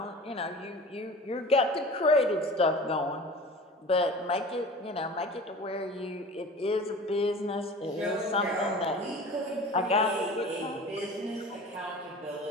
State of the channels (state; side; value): normal; both; correlation 0.39